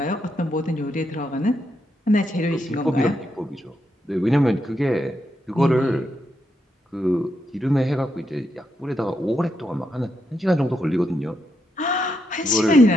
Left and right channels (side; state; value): both; normal; correlation 0.82